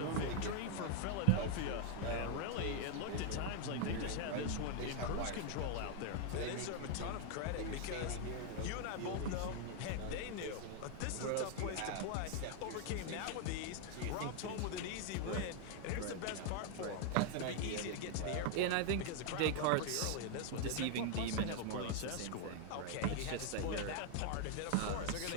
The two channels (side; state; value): both; different; correlation 0.00